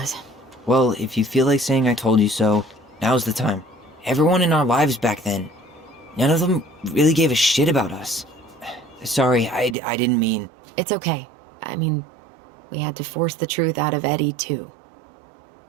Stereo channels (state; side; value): drops out; left; at 9.8 s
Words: Well, if you feel like saying I told you so, now's the time. Everyone in our lives back then, none of them really gave a shit about us. Sorry, I didn't mean... It's okay. I mean, we had to force the truth out of Eddie, too.